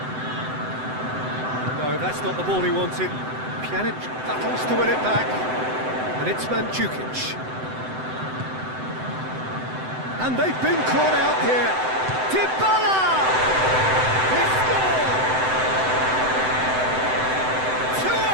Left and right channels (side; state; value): left; late; 7.8 ms